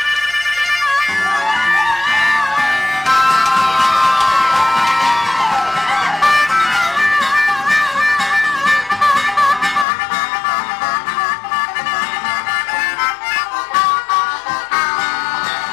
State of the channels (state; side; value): drops out; right; at 9.9 s